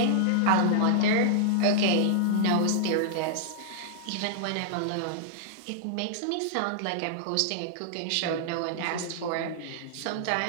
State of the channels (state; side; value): different; both; correlation -0.01